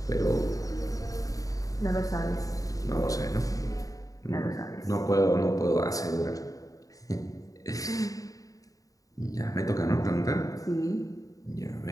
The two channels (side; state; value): right; late; 0.17 ms